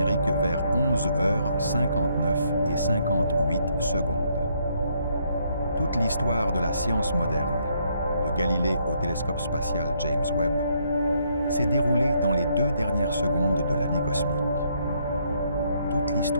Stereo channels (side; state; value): both; inverted; correlation -0.72